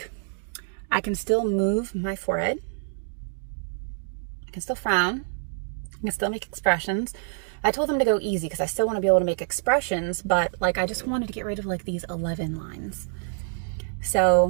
I can still move my forehead. I can still frown. I can still make expressions. I told them to go easy because I still want to be able to make expressions, but like I just wanted to get rid of like these 11 lines.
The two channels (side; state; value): left; silent; digital silence